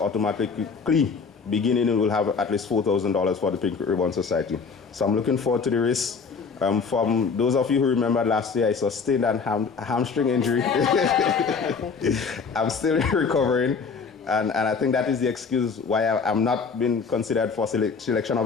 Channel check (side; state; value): right; quieter; 5.3 dB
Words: beginning, we will have at least $4,000 for the Pink Ribbon Society. So I'm looking forward to the race. From those of you who remember last year, I sustained a hamstring injury. I'm still recovering, and I think that is the excuse why I'm not being considered for selection of